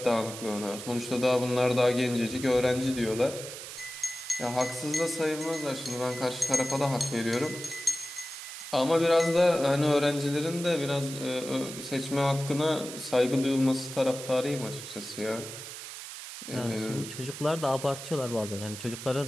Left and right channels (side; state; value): right; noise; hiss, 10 dB below the sound